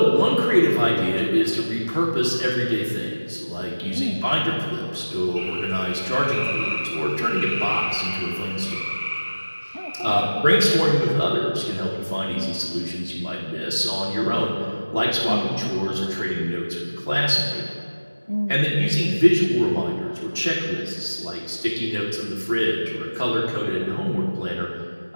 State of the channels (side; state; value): both; inverted; correlation -1.00